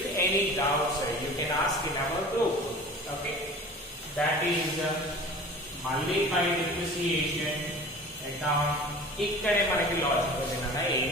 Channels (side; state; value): both; normal; correlation 0.40